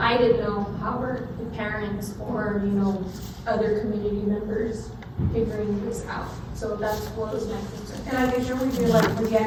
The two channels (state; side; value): identical; both; correlation 1.00